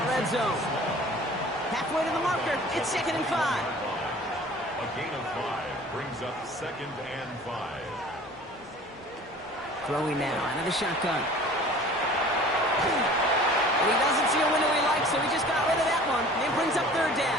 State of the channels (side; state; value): both; normal; correlation 0.46